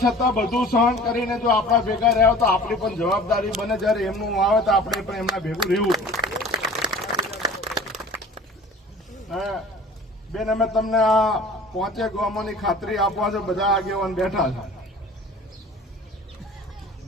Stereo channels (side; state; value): both; normal; correlation 0.45